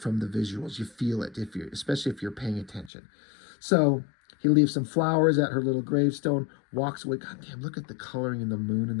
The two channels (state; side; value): drops out; right; at 2.9 s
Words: the visuals. You feel it, especially if you're paying attention. So he leaves some flowers at her little gravestone, walks away. God damn, look at the coloring in the moon and